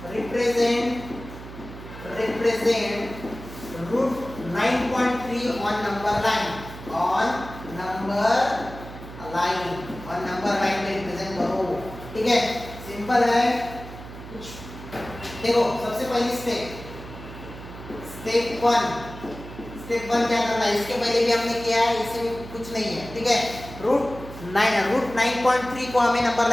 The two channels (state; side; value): noise; right; hum, 14 dB below the sound